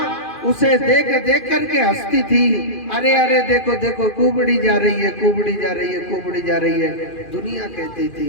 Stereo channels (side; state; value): right; late; 2.4 ms